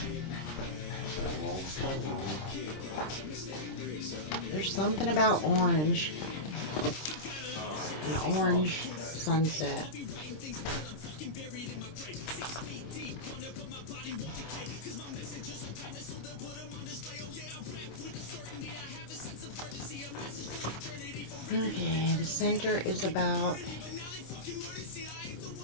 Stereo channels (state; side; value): late; right; 26 ms